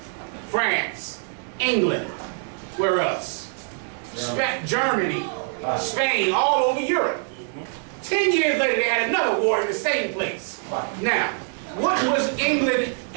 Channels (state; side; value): silent; left; 56 dB below the other